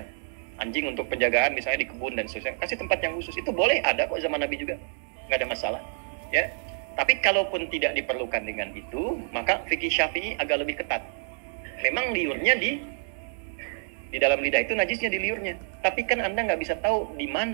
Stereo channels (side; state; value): left; silent; 60 dB below the other